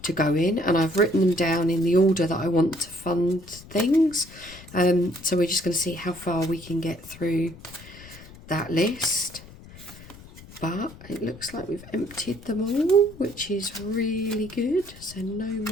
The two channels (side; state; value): left; noise; rumble, 19 dB below the sound